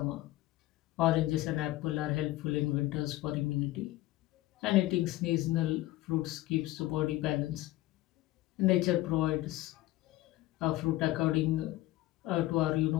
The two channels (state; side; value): quieter; right; 16.9 dB